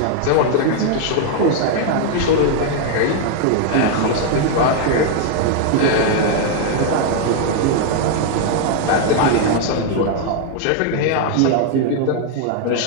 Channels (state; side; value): different; both; correlation 0.00